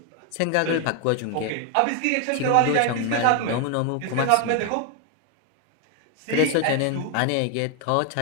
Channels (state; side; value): different; both; correlation 0.01